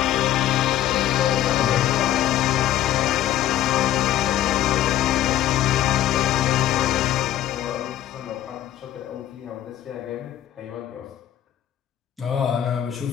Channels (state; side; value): quieter; right; 12.1 dB